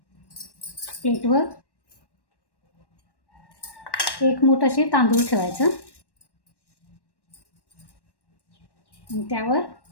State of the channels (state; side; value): late; right; 1.1 ms